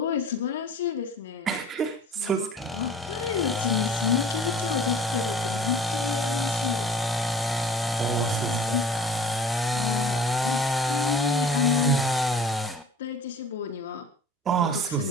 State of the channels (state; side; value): normal; both; correlation 0.46